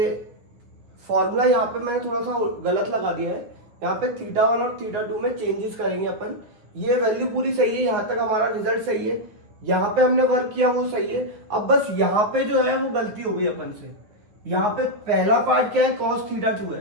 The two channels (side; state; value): left; late; 9.4 ms